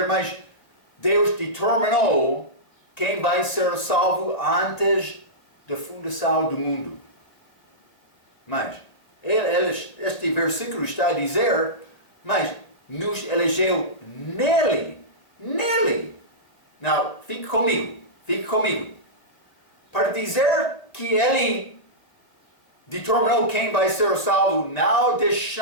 mas Deus determinou quem vai ser salvo antes da fundação do mundo. Mas este versículo está a dizer, mas nos elegeu nele. Não, fique comigo. Para dizer que ele determinou quem vai ser salvo, não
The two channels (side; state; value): right; late; 1.9 ms